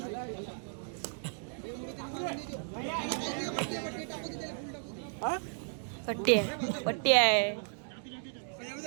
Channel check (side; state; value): left; silent; 55 dB below the other